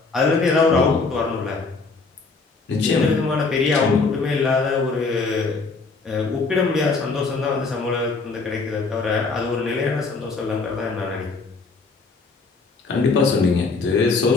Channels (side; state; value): right; quieter; 4.2 dB